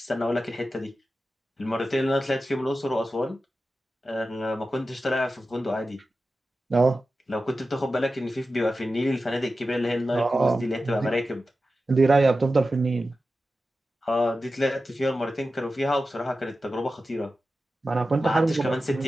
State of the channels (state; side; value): normal; both; correlation 0.93